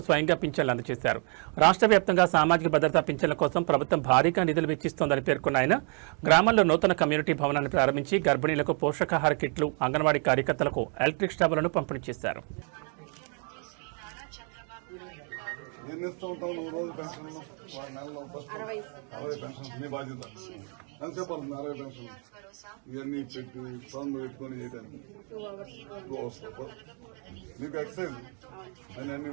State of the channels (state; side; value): quieter; left; 39.9 dB